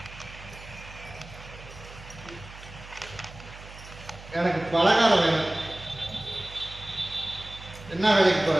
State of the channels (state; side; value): noise; right; hum, 16 dB below the sound